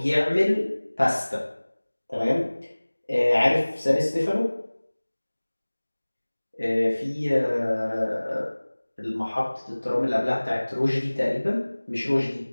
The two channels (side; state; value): both; inverted; correlation -1.00